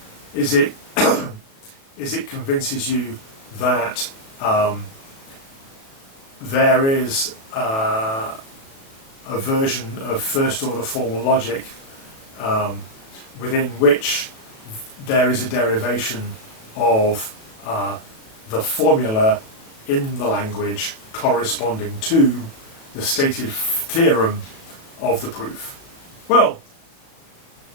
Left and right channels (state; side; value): late; right; 36 ms